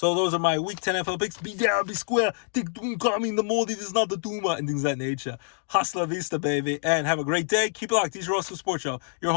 those are my Week 10 NFL picks. Be down, be square. Think coming the more. This is not the Duma. And things of that nature. Hasta la vista, baby. And have a great day. Keep it locked. DJ Roscoe Sports Show. Your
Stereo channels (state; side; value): silent; right; digital silence